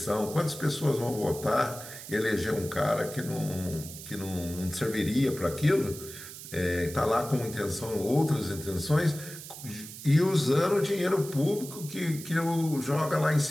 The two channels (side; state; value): right; noise; hiss, 13 dB below the sound